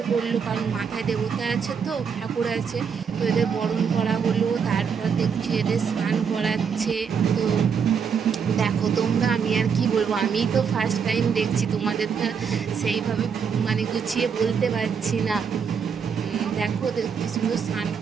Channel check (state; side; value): quieter; left; 6.5 dB